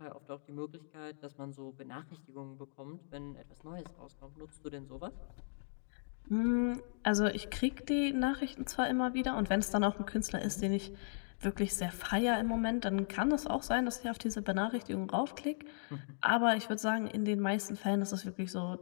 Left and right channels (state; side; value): silent; right; digital silence